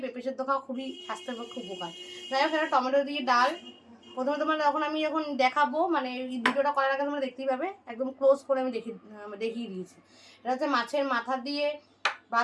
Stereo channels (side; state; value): both; identical; correlation 1.00